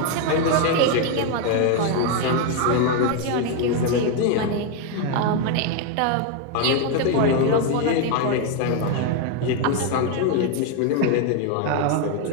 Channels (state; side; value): different; both; correlation 0.01